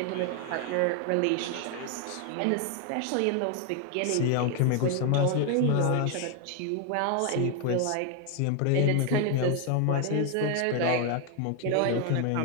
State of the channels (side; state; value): both; different; correlation 0.00